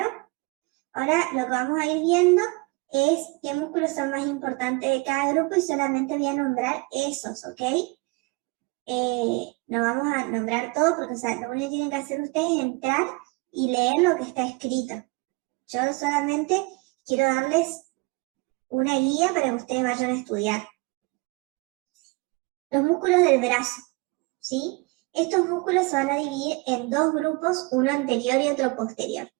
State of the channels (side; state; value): left; quieter; 27.5 dB